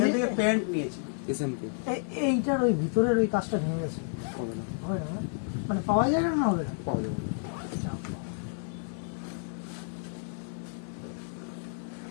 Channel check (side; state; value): right; silent; digital silence